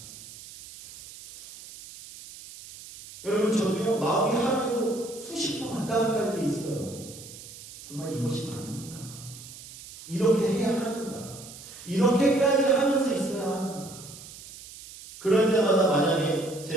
여러분, 저도요, 마음이 하루에도 수십 번 왔다 갔다 할 때 있어요. 정말 이것이 맞는가? 이렇게 해야 하는가? 이렇게까지 하면서 있어야 하는가? 그럴 때마다 만약에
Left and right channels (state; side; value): noise; right; hiss, 16 dB below the sound